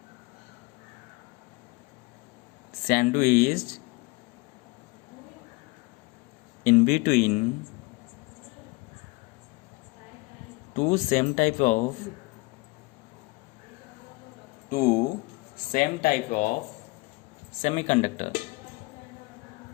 sandwiched in between two same type of semiconductor.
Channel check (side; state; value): right; quieter; 25.0 dB